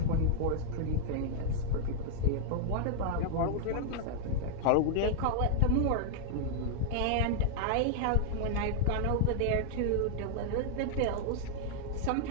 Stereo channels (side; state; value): both; different; correlation -0.01